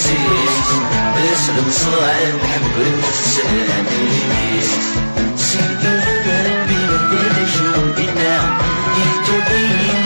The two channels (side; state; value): both; inverted; correlation -1.00